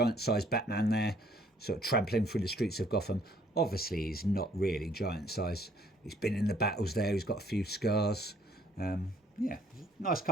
Batman there, sort of trampling through the streets of Gotham. Obviously, he's not really giant size. He's been in the battles there. He's got a few scars. Yeah, nice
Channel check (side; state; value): both; normal; correlation 0.62